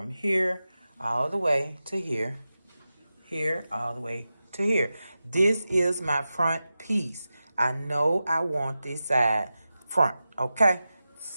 here all the way to here, here all the way to here. This is my front piece. I know I want this side front, okay?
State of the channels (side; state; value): both; inverted; correlation -0.93